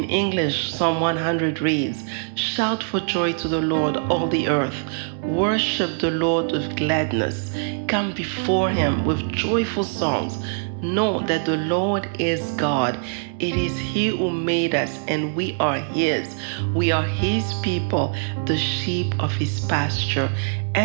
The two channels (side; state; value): left; silent; digital silence